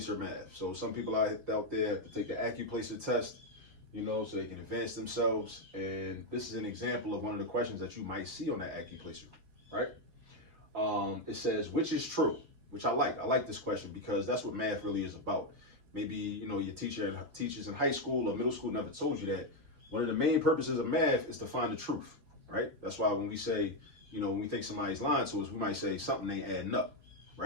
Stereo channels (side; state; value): left; late; 5.3 ms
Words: math. So some people out there have to take the Accuplacer test, so they can advance themselves. And this is an example of one of the questions that you might see on that Accuplacer, right? It says, which is true? Which I like. I like this question because that's what math really is about. Maybe, your teachers in high school or middle school never told you that one of the main purposes of math is to find the truth. Right? That's why when we say, when we think somebody's lying to us, we might say something ain't adding up,